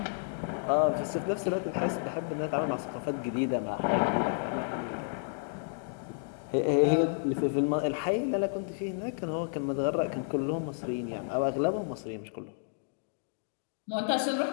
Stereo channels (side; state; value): right; silent; digital silence